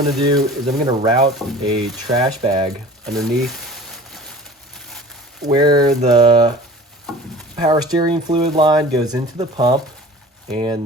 to do is I'm going to route a trash bag underneath where the power steering fluid line goes into the pump,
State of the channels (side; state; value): both; normal; correlation 0.42